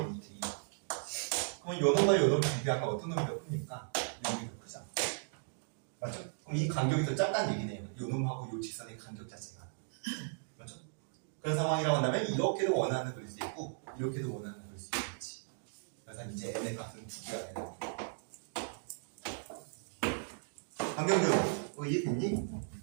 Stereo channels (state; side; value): silent; left; digital silence